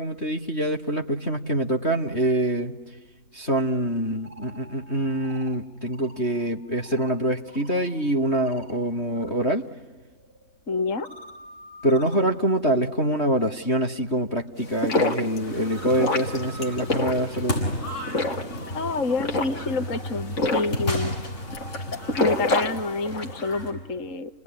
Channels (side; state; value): right; late; 3.6 ms